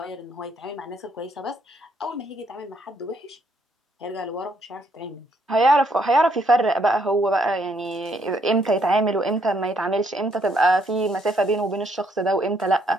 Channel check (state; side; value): normal; both; correlation 0.71